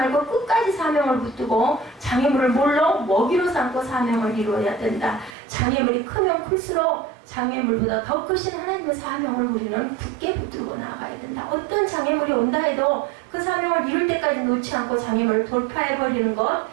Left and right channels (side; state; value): left; drops out; at 5.4 s